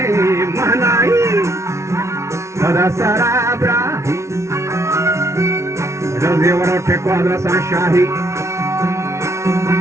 महनाई सदा सराबरा जल्दी वरों ठेको अदरसा शाही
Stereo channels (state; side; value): late; left; 0.13 ms